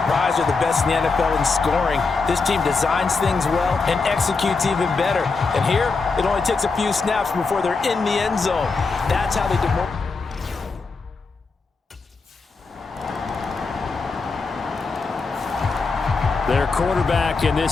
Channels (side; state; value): right; quieter; 4.3 dB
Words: they're the best in the NFL in scoring. This team designs things well and executes even better. And here, it only takes a few snaps before they're in the end zone. That's how they do more. Their quarterback in